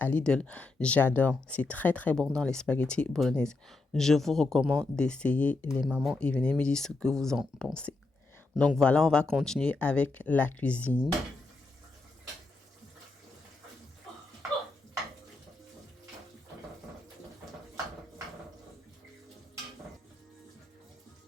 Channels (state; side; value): quieter; right; 3.3 dB